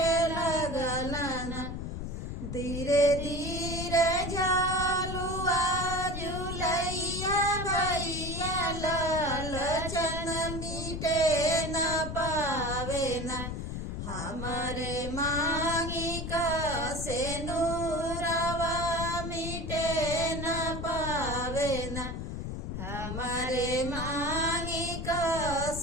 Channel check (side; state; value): left; noise; rumble, 5 dB below the sound